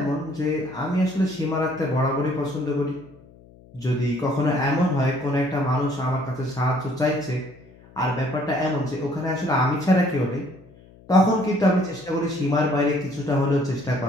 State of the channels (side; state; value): left; noise; hum, 24 dB below the sound